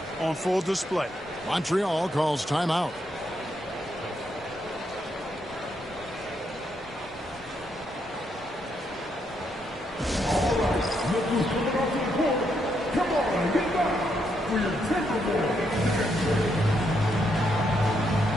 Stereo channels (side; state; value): both; normal; correlation 0.78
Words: on full display. Montreal calls timeout. Come on, get back for your Timberwolves.